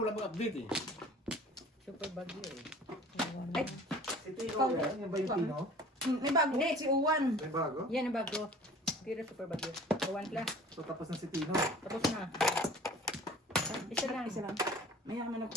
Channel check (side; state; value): both; normal; correlation 0.46